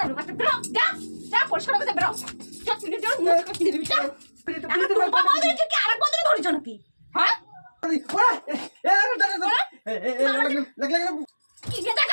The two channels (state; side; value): inverted; both; correlation -1.00